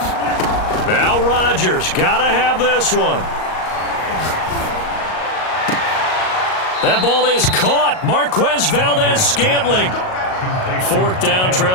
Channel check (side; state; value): right; late; 38 ms